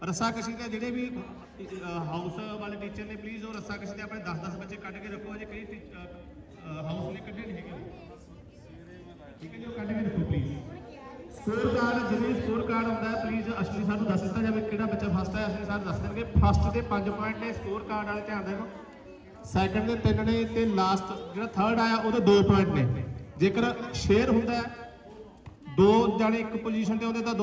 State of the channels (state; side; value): identical; both; correlation 1.00